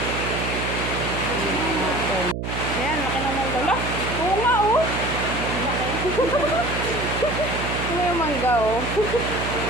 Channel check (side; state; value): right; noise; hum, 4 dB below the sound